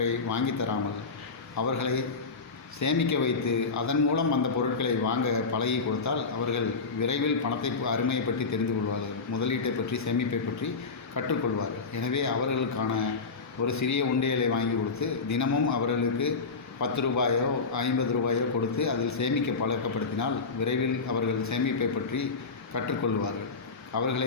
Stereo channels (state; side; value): quieter; right; 4.4 dB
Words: வாங்கி தராமல் அவர்களை சேமிக்க வைத்து அதன் மூலம் அந்த பொருட்களை வாங்க பழகி கொடுத்தால் அவர்கள் விரைவில் பணத்தை அருமையை பற்றி தெரிந்து கொள்வார்கள், முதலீட்டை பற்றி, சேமிப்பை பற்றி கற்றுக்கொள்வார்கள். எனவே அவர்களுக்கான ஒரு சிறிய உண்டியலை வாங்கி கொடுத்து தினமும் அவர்களுக்கு 10 ரூபாயோ 50 ரூபாயோ கொடுத்து அதில் சேமிக்க பழக்கப்படுத்தினால் விரைவில் அவர்கள் சேமிப்பை பற்றி கற்றுக்கொள்வார்கள். அவர்களை